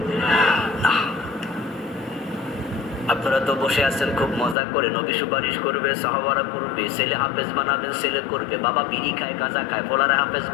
না। আপনারা তো বসে আছেন খুব মজা করে, নবী সুপারিশ করবে, সাহাবারা করবে, ছেলে হাফেজ বানাবেন, ছেলে করবে, বাবা বিড়ি খায়, গাঁজা খায়, ফলারে হাফেজ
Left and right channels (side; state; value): right; drops out; at 4.5 s